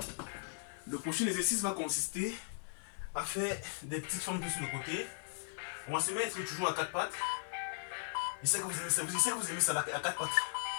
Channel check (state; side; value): silent; right; 53 dB below the other